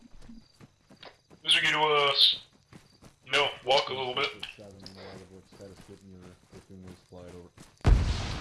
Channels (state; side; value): identical; both; correlation 1.00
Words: As we get to, walk a little bit.